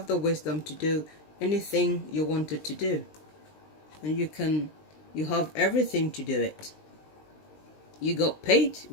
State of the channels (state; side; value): late; right; 20 ms